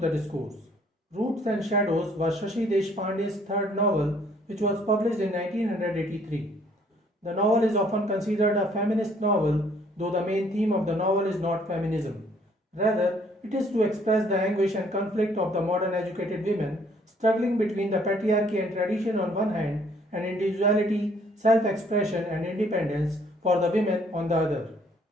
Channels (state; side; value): normal; both; correlation 0.62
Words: Discourse. Roots and Shadows was Shashi Deshpande's third novel, which was published in 1983. The novel is often considered a feminist novel, though the main theme of the novel is not feminism. Rather, it is to express the anguish and conflict of the modern educated women struggling between the patriarchy and tradition on one hand and individuality, self-expression and independence for the women on the other.